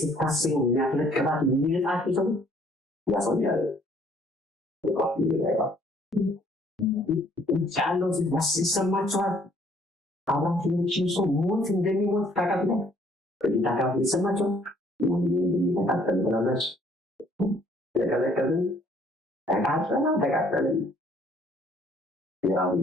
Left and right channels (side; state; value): both; normal; correlation 0.62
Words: ስታስቡ የሚያፈለቅባት የሚልጣቸው ሰው ያሰኛል ቻለው ሲሰማቸዋል አባቶችን ሰው ሞት እንደሚሞት ታውቃለ ታውቃለ ይሰማቸው እንደሚተካከል ብላለች ለከለከልን ተቃጠለን ያው